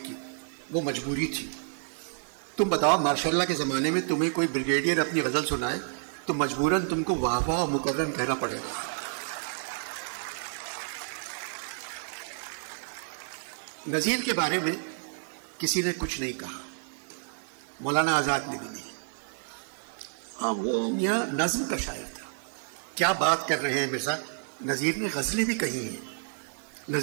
کی، وہ مجبوری تھی۔ تم بتاؤ ماشاء اللہ کے زمانے میں تمہیں کوئی بریگیڈیئر اپنی غزل سنائے تو مجبوراً تم کو واہ واہ مکرم کہنا پڑے گا۔ نذیر کے بارے میں کسی نے کچھ نہیں کہا، مولانا آزاد نے بھی نہیں۔ ہاں وہ میاں نظم کا شاعر تھا۔ کیا بات کر رہے ہیں مرزا، نذیر نے غزلیں بھی کہی ہیں۔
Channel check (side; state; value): left; silent; 58 dB below the other